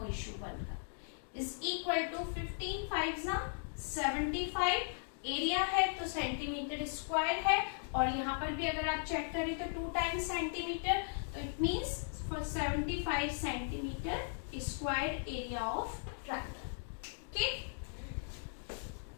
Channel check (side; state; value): right; silent; digital silence